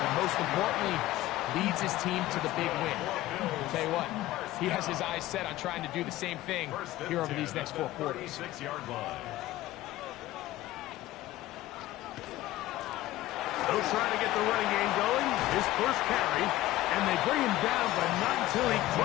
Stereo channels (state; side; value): quieter; right; 16.0 dB